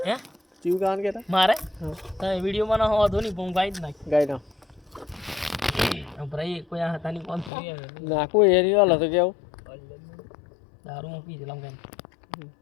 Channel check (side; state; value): right; drops out; at 7.5 s